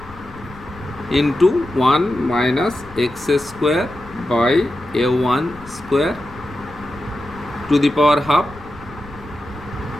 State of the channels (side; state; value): left; noise; rumble, 19 dB below the sound